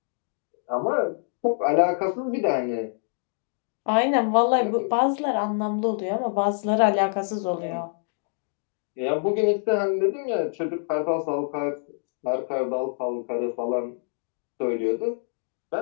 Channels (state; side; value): silent; right; digital silence